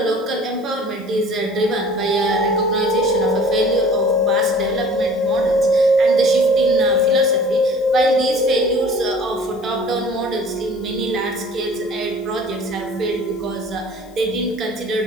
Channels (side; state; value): left; noise; hiss, 29 dB below the sound